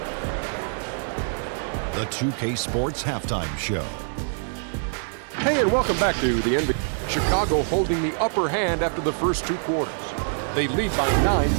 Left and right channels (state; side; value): silent; left; digital silence